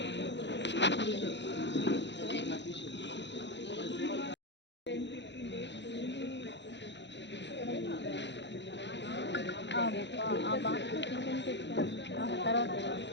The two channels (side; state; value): right; late; 0.52 ms